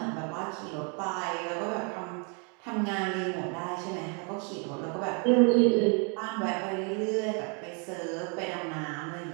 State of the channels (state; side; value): quieter; left; 36.6 dB